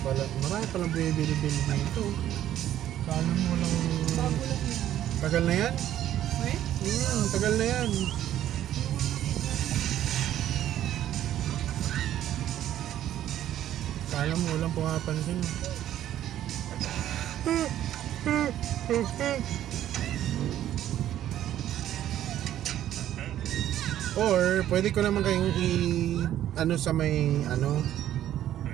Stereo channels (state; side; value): quieter; left; 12.0 dB